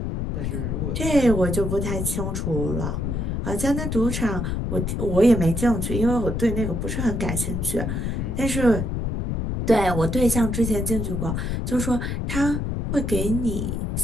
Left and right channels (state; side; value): noise; left; rumble, 2 dB below the sound